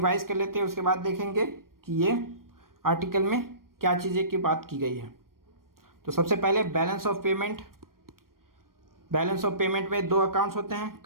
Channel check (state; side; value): late; left; 0.92 ms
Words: कर लेते हैं, उसके बाद देखेंगे कि ये आर्टिकल में क्या चीज़ें की बात की गई है। तो सबसे पहले balance of payment. Balance of payment में 2 अकाउंट्स होते हैं,